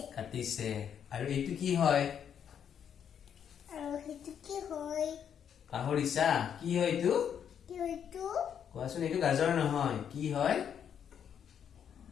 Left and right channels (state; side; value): quieter; right; 8.4 dB